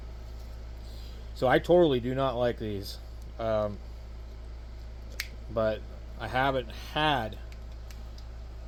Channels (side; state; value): both; identical; correlation 1.00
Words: So I totally do not like these. But I haven't had